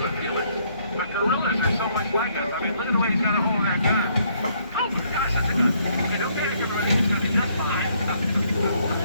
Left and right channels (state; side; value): inverted; both; correlation -0.68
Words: with Felix. But gorillas are so much like us. I mean, look at the way he's got a hold of that gun. Oh my gosh, that's a gun. Hey, don't panic, everybody. It's going to be just fine.